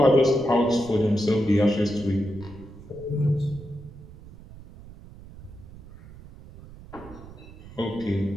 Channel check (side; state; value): right; noise; rumble, 18 dB below the sound